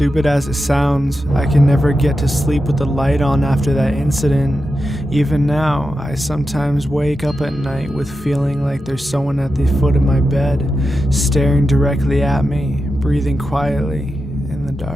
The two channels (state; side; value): normal; both; correlation 0.90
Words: as it sounds, I can never get to sleep with the light on after that incident. Even now, I sometimes wake up at night with feeling like there's someone at the foot of my bed, staring directly at me, breathing quietly in the